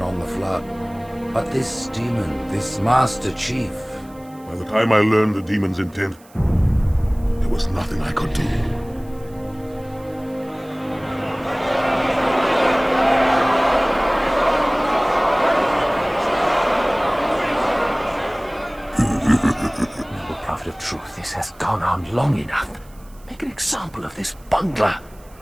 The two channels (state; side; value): noise; right; hiss, 27 dB below the sound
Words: on the Flood. But this demon, this Master Chief... By the time I learned the demon's intent, there was nothing I could do. Noble Prophet of Truth, this has gone on long enough. Make an example of this bungler.